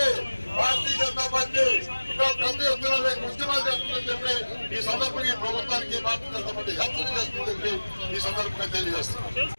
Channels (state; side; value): inverted; both; correlation -1.00